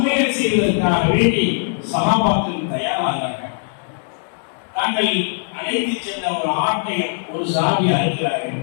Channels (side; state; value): right; silent; digital silence